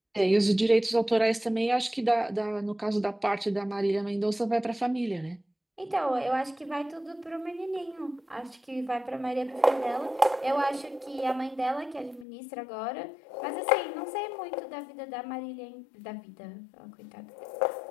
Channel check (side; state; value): right; drops out; at 12.2 s